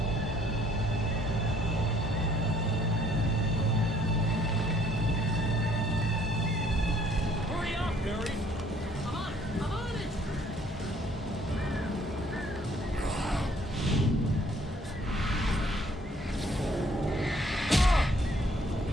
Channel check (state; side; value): normal; both; correlation 0.62